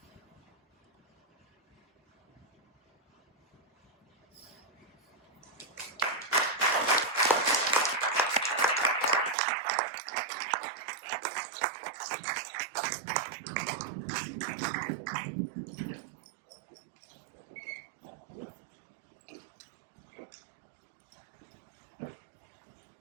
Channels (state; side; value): drops out; left; at 9.3 s